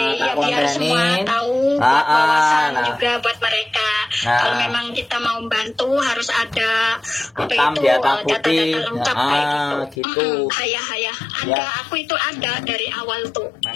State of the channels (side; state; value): right; drops out; at 10.0 s